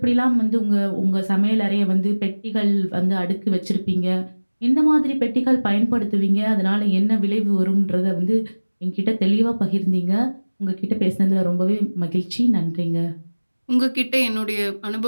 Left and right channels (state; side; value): inverted; both; correlation -1.00